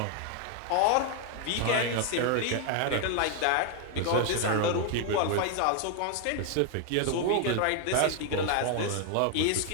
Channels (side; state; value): both; different; correlation 0.00